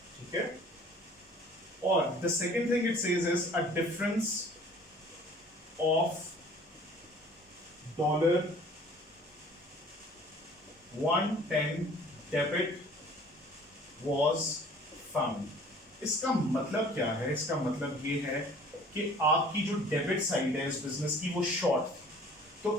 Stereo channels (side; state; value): both; normal; correlation 0.51